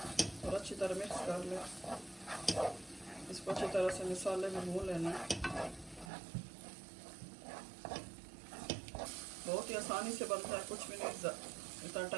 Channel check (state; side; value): drops out; left; at 6.1 s